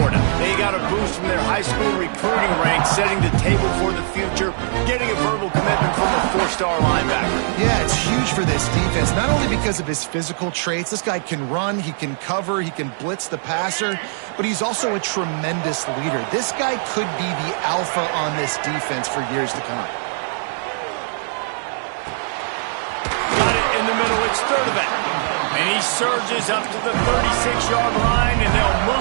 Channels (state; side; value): silent; left; 63 dB below the other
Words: They got a boost from their high school recruiting ranks, setting the table for the future, getting a verbal commitment from a 4-star linebacker. Yeah, it's huge for this defense, not only because of his physical traits. This guy can run, he can cover, he can blitz the passer, but he's also a tremendous leader. This guy could be the alpha on this defense for years to come. Got it in the middle, it's Sturdivant. And he surges up to the 36-yard line, and they'll